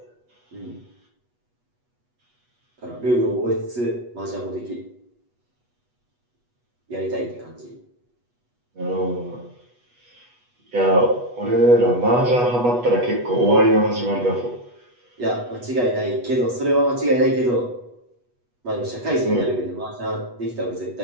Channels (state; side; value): late; left; 8.2 ms